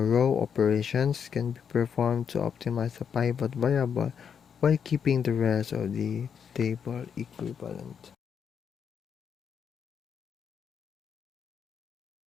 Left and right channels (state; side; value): quieter; right; 7.3 dB